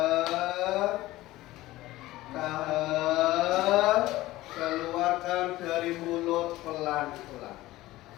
Tahan. Keluarkan dari mulut pelan-pelan.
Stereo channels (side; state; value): right; quieter; 17.2 dB